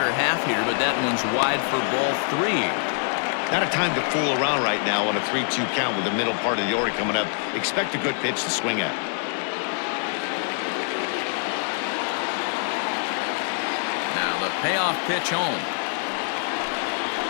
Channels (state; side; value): silent; right; 58 dB below the other